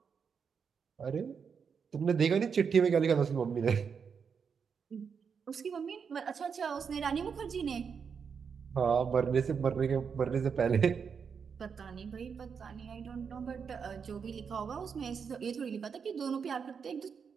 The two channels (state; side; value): quieter; left; 6.3 dB